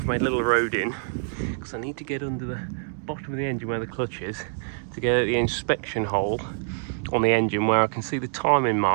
made a little road in because I need to get under the bottom of the engine where the clutch is to get at the inspection hole on the engine where I can see the timing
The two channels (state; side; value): silent; left; 59 dB below the other